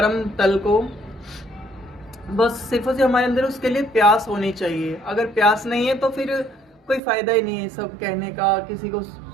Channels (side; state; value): left; drops out; at 7.0 s